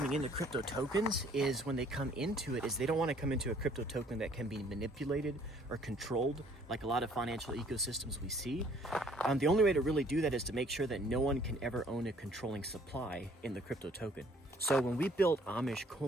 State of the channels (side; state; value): both; normal; correlation 0.59